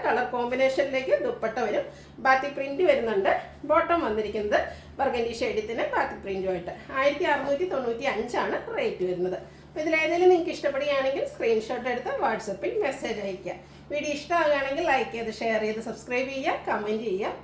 കളർ കോമ്പിനേഷനിലേക്ക് ദുപ്പട്ട വരും. ബാത്തി പ്രിൻറ്റ് വരുന്നുണ്ട്. ബോട്ടം വന്നിരിക്കുന്നത് ബർഗൻഡി ഷെയ്ഡത്തിന് ബാത്തി പ്രിൻറ്റുമായിട്ട് 1695 ആണ് റേറ്റ് വരുന്നത്. അപ്പോൾ ഇതിലേതെങ്കിലും നിങ്ങൾക്ക് ഇഷ്ടപ്പെടുകയാണെങ്കിൽ സ്ക്രീൻഷോട്ട് എടുത്ത് വാട്സപ്പിൽ മെസ്സേജ് അയയ്ക്കുക. വീഡിയോ ഇഷ്ടമാകുകയാണെങ്കിൽ ലൈക്ക് ചെയ്ത് ഷെയർ ചെയ്ത് സബ്സ്ക്രൈബ് ചെയ്യുക, കമൻറ്റ് ചെയ്യുക,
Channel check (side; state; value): both; identical; correlation 1.00